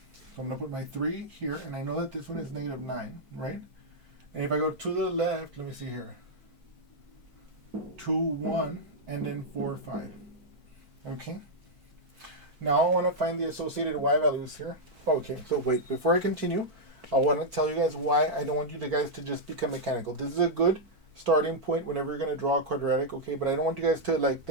So I'm going to put my 3 here, and I know that this one is negative 9, right? And if I go to the left, let me see here. 2, 1, and then 4, 5. Okay? Now I want to find the associated y values here. Okay, so wait, before I continue, I want to tell you guys why I don't want you guys to just become mechanical. This is a good starting point whenever you're going to draw a quadratic, okay? But I don't want you guys to like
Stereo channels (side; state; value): left; late; 4.5 ms